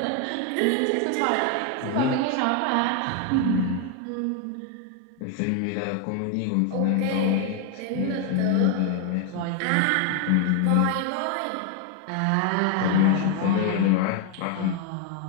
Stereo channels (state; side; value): different; both; correlation 0.01